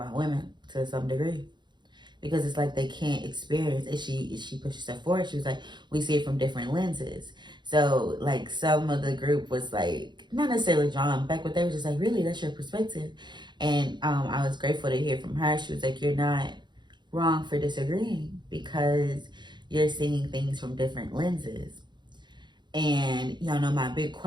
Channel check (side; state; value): left; late; 0.22 ms